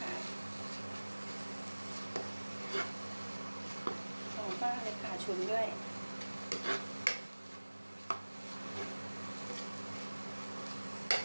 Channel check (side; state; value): both; inverted; correlation -1.00